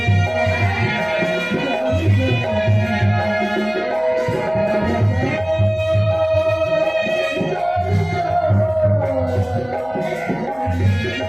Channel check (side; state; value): left; noise; hum, 24 dB below the sound